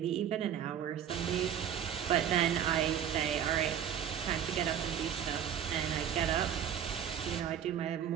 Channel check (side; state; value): left; quieter; 9.3 dB